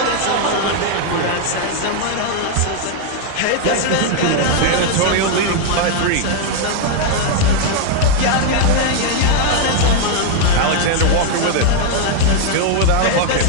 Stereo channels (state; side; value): different; both; correlation 0.00